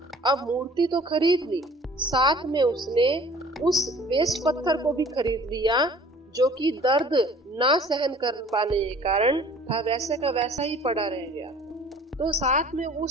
अब मूर्ति तो खरीद ली, साथ में उसने उस वेस्ट पत्थर को भी खरीद लिया, जो कि दर्द ना सहन कर पाने के कारण था वैसे का वैसा ही पड़ा रह गया। तो साथ में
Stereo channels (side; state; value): both; normal; correlation 0.50